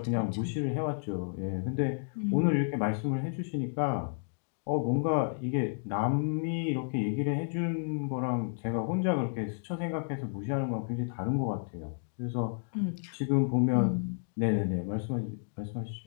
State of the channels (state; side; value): silent; right; digital silence